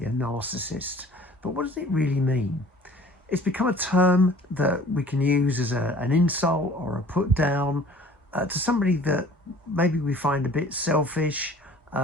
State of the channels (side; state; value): both; normal; correlation 0.49